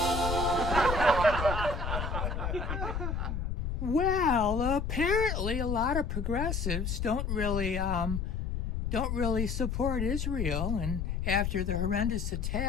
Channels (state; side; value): noise; left; rumble, 2 dB below the sound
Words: Well, apparently a lot of progressives don't really support Israel, and after the horrendous